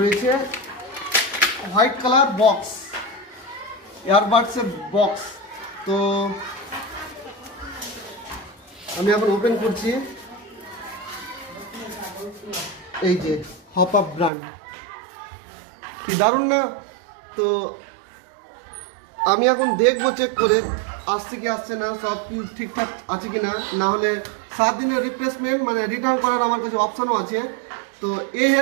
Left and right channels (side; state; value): left; drops out; at 14.3 s